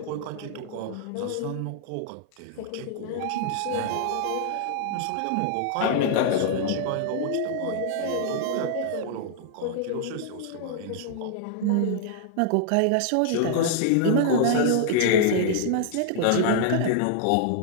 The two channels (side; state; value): both; different; correlation -0.01